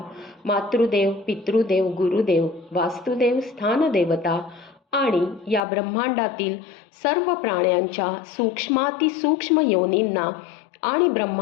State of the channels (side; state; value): right; drops out; at 5.6 s